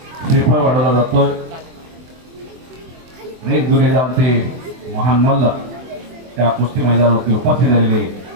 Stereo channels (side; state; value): left; late; 24 ms